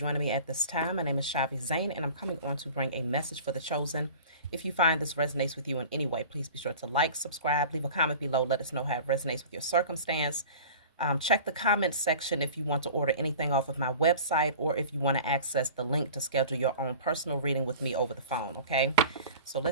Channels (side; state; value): both; inverted; correlation -0.41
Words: me at this time. My name is Shavi Zane, and I'm coming on to bring a message for the chosen. If you find this resonates with you in any way, please be sure to like, subscribe, leave a comment below. Let us know how it resonates with your circumstance. Check the comments section if you want to order anything off of my website, or if you want to access the link to schedule your own personal reading with me over the phone, okay? So